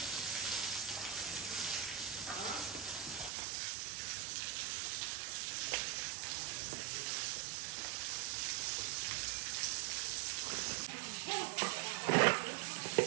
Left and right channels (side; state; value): left; drops out; at 3.3 s